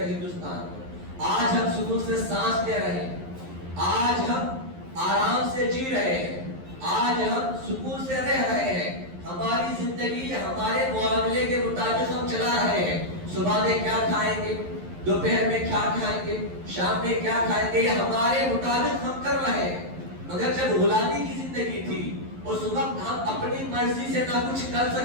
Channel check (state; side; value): late; left; 11 ms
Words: ہندوستان کو. آج ہم سکون سے سانس لے رہے ہیں، آج ہم آرام سے جی رہے ہیں، آج ہم سکون سے رہ رہے ہیں. ہماری زندگی ہمارے معاملے کے مطابق ہم چلا رہے ہیں. صبح میں کیا کھائیں گے، دوپہر میں کیا کھائیں گے، شام میں کیا کھائیں گے، یہ ہمارے مطابق ہم کر رہے ہیں. مگر جب غلامی کی زندگی تھی اس وقت ہم اپنی مرضی سے نہ کچھ کر